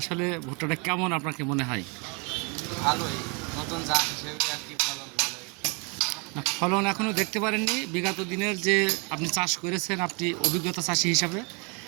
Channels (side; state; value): left; quieter; 32.6 dB